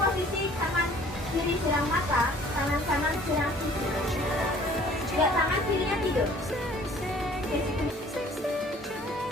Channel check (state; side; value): normal; both; correlation 0.53